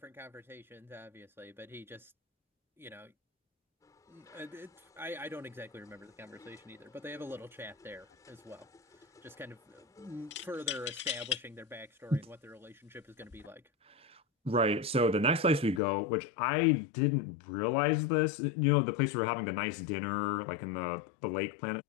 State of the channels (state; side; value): drops out; right; at 15.8 s